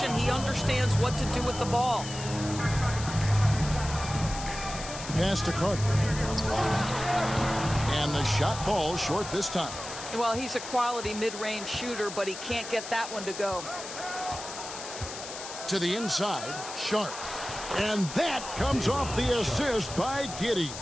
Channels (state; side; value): noise; left; hiss, 10 dB below the sound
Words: He understands what to do with the ball. Pass to Carter. And the shot falls short this time. Well, he's a quality mid-range shooter, but he can't get that one to go. To the inside, Sharp. And that comes off the assist by Giddey.